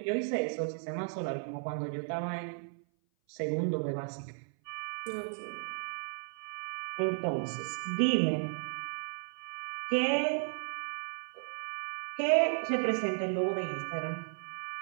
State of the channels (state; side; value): silent; left; 55 dB below the other